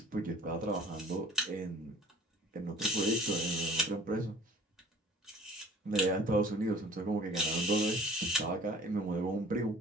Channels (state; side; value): normal; both; correlation 0.50